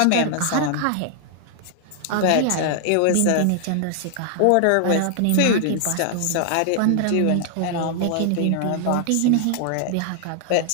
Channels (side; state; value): both; different; correlation 0.00